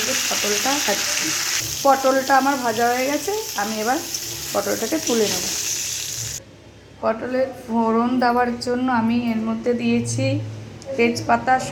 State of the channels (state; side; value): identical; both; correlation 1.00